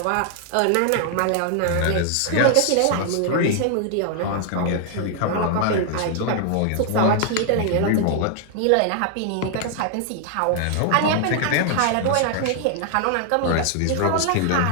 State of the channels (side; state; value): both; different; correlation 0.00